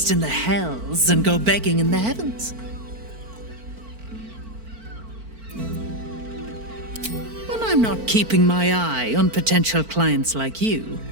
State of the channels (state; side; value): late; left; 4.5 ms